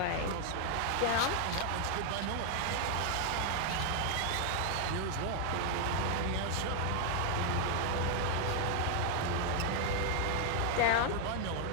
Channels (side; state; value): both; different; correlation 0.00